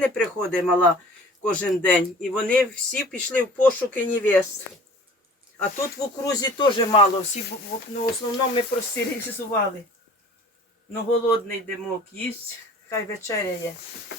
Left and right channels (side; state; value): both; normal; correlation 0.46